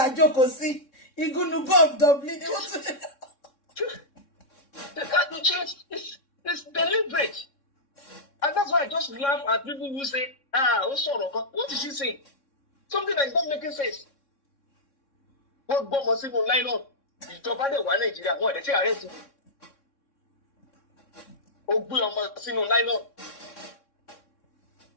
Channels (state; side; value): late; right; 3.6 ms